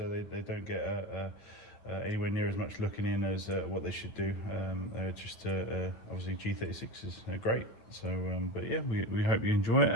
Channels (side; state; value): right; late; 8.9 ms